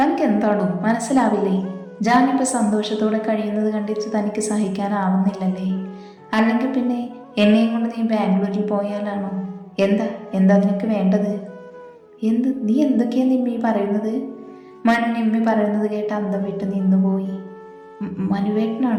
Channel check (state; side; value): identical; both; correlation 1.00